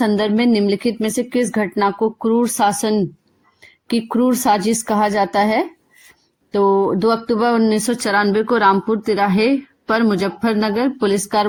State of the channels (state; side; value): identical; both; correlation 1.00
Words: में निम्नलिखित में से किस घटना को क्रूर शासन की क्रूर साजिश कहा जाता है? तो 2 अक्टूबर 1994 को रामपुर तिराहे पर मुजफ्फरनगर पुलिस